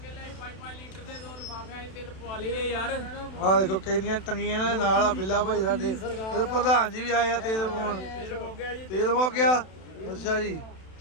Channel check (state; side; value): late; right; 32 ms